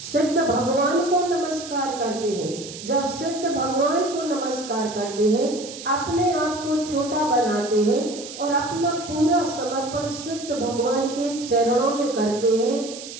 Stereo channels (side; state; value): right; noise; hiss, 12 dB below the sound